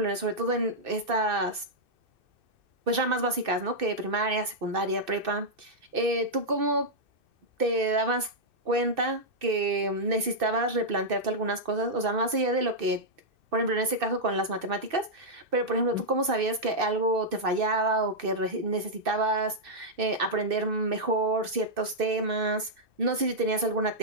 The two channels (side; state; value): left; late; 2.6 ms